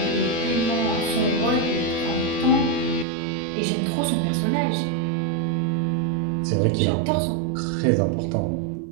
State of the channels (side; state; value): left; drops out; at 3.1 s